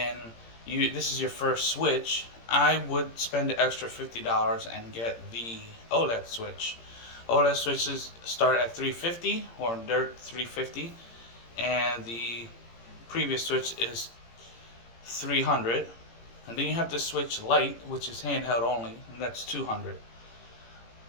this is your first Switch, I would spend the extra $50 and get the OLED Switch. OLED Switches start at $350, or they're $350, and the previous Switch is $300. And then you have the Switch Lite, which is handheld only, and that's $200.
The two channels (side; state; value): right; late; 17 ms